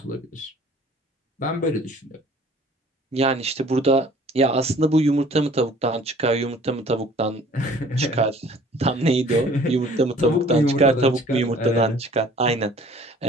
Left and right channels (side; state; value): both; normal; correlation 0.52